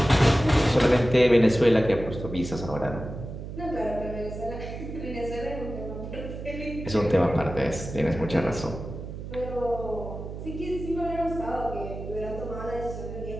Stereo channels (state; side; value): noise; right; hum, 9 dB below the sound